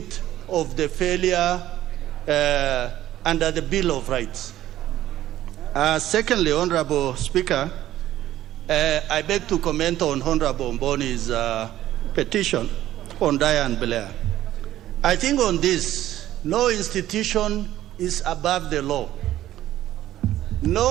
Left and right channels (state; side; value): quieter; left; 13.5 dB